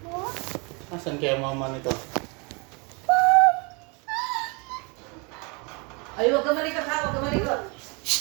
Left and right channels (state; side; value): quieter; left; 31.0 dB